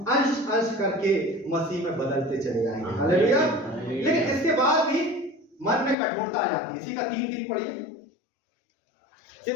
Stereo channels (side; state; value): right; drops out; at 6.0 s